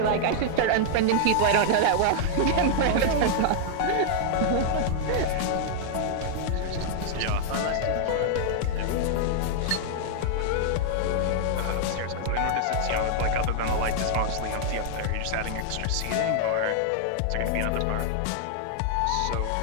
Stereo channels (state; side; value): different; both; correlation -0.01